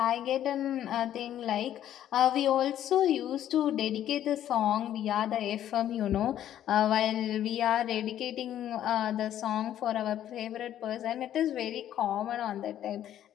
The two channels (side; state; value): right; quieter; 11.3 dB